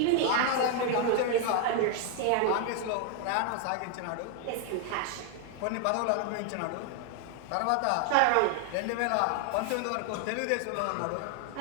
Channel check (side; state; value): both; different; correlation 0.00